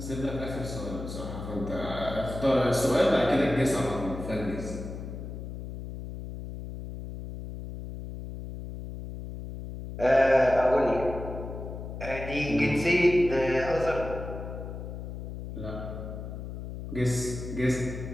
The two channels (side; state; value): left; noise; hum, 8 dB below the sound